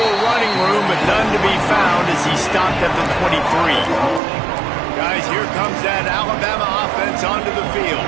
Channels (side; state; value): left; drops out; at 4.2 s